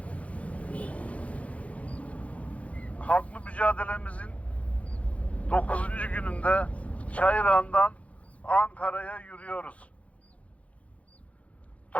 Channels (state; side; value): late; right; 0.065 ms